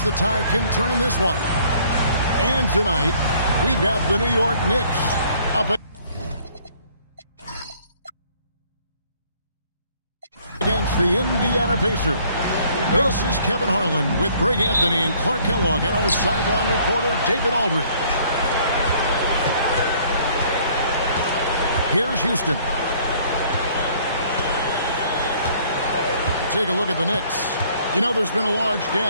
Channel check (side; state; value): both; inverted; correlation -0.60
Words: the tide can turn in this one. And tonight, we've got the New York Knicks up against the Indiana Pacers. This is Kevin Harlan with Greg Anthony and Clark Kellogg and our sideline reporter, David Aldridge. Here's Houston. Take a look at the Knicks. You know, there's been a large